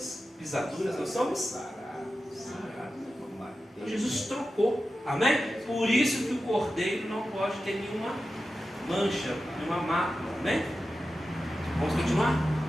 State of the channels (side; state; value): both; normal; correlation 0.92